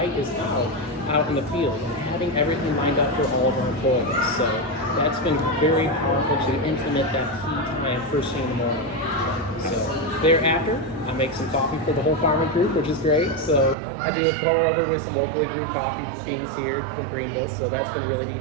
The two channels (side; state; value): left; drops out; at 13.8 s